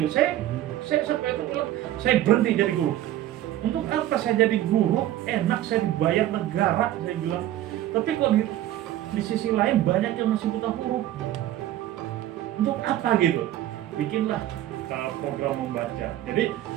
Saya sampai itu bilang, saya berhenti jadi guru. Untuk apa saya jadi guru? Enak, saya dibayar negara, saya bilang. Tapi kok di sisi lain banyak yang masih buta huruf. Untuk apa gitu? Bikinlah program membaca. Jadi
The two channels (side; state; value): left; quieter; 13.4 dB